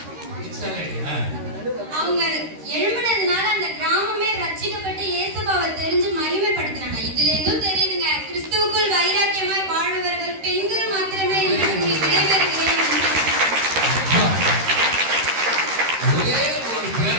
அவங்க எழும்பினதுனால அந்த கிராமமே ரட்சிக்கப்பட்டு இயேசுவை தெரிஞ்சு மகிமைப்படுத்தினாங்க. இதுல இருந்தும் தெரியுதுங்க, கிறிஸ்துவுக்குள் வைராக்கியமாய் வாழ்பவர்கள் பெண்கள் மாத்திரமே என்று விடைபெறுகிறேன்.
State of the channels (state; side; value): late; left; 13 ms